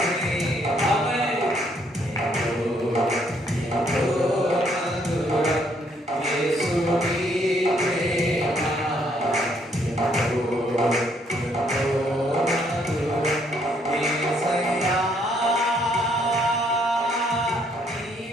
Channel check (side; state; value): both; normal; correlation 0.69